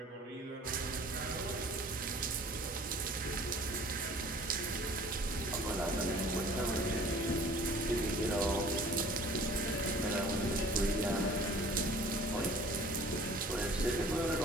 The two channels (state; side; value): normal; both; correlation 0.49